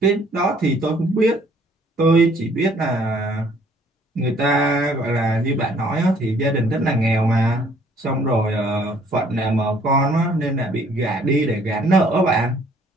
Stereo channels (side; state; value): both; normal; correlation 0.60